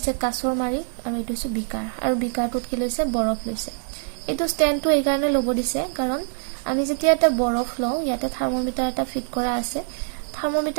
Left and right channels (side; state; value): left; silent; 59 dB below the other